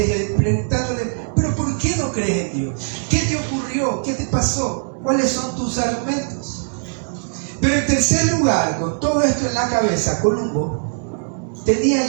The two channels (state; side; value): silent; left; digital silence